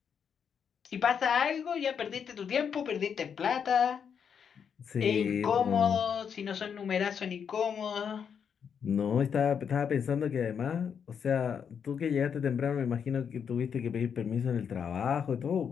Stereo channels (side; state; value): right; quieter; 7.3 dB